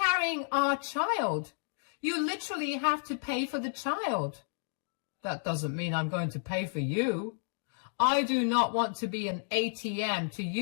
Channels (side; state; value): right; silent; digital silence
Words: our child. You literally have to pay for the child. That doesn't mean I'm going to pay for you. I do not want to be an ATM to